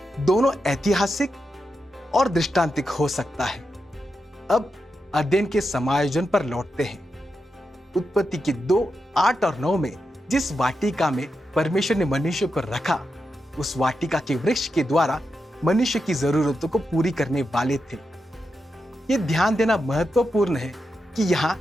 दोनों ऐतिहासिक और दृष्टांतिक हो सकता है। अब अध्ययन के समायोजन पर लौटते हैं। उत्पत्ति के 2, 8 और 9 में जिस वाटिका में परमेश्वर ने मनुष्य को रखा, उस वाटिका के वृक्ष के द्वारा मनुष्य की जरूरतों को पूरी करने वाले थे। यह ध्यान देना महत्वपूर्ण है कि यहाँ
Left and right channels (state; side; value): normal; both; correlation 0.87